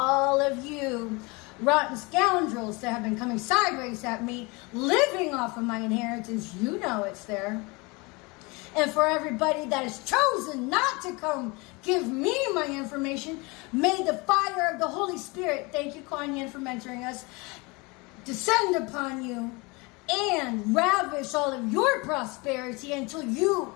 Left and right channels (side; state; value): right; quieter; 26.6 dB